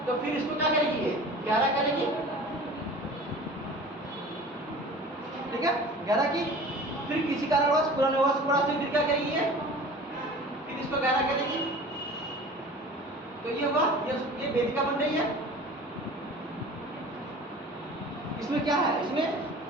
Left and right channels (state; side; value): normal; both; correlation 0.41